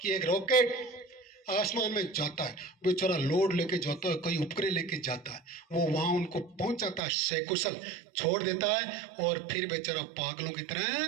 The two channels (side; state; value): left; drops out; at 7.0 s